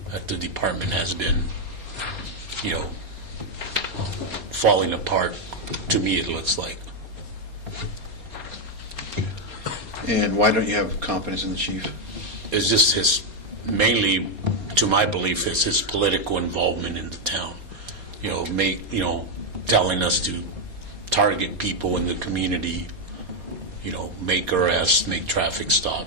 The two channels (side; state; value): left; late; 4.3 ms